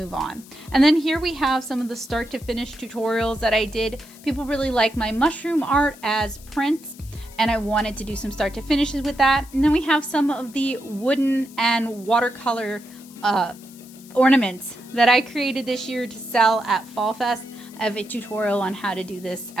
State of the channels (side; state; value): left; noise; hiss, 22 dB below the sound